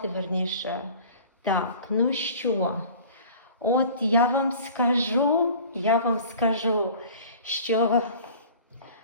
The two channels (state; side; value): inverted; both; correlation -0.44